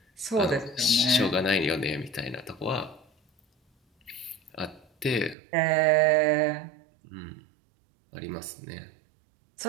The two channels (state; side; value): drops out; left; at 5.4 s